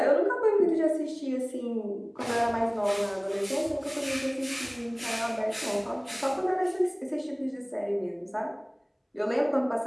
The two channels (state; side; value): identical; both; correlation 1.00